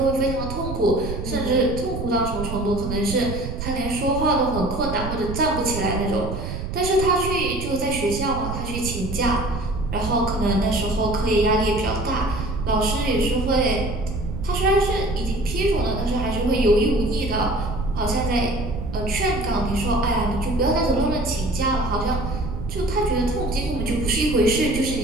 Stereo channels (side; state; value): right; noise; rumble, 6 dB below the sound